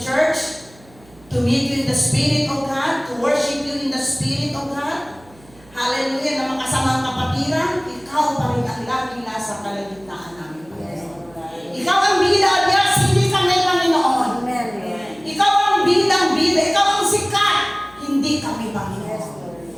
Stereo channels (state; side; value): noise; right; hum, 26 dB below the sound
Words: church, to meet you in the Spirit of God, to worship you in the Spirit of God. Hallelujah, na makasama ang kapatiran, ikaw pa rin ang laging nasa kalagitnaan namin, Panginoon. Ikaw ang bida, Diyos, hindi kami, Panginoon. Amen. Ikaw ang bidang-bida, ikaw ang sikat, hindi kami, Panginoon.